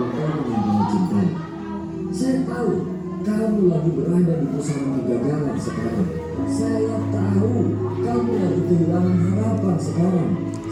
yang kamu cintai. Saya tahu kamu lagi berada di pusaran kegagalan sekarang. Saya tahu kamu lagi kehilangan harapan sekarang.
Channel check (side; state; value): both; identical; correlation 1.00